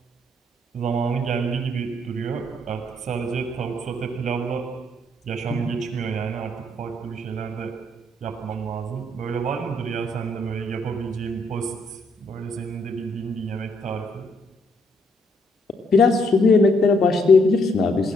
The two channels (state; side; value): normal; both; correlation 0.71